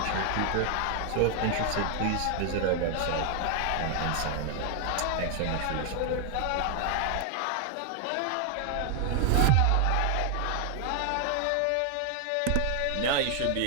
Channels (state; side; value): different; both; correlation 0.00